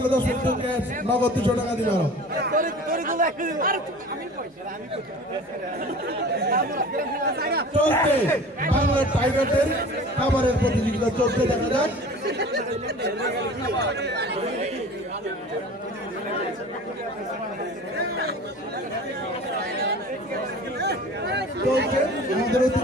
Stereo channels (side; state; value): both; normal; correlation 0.41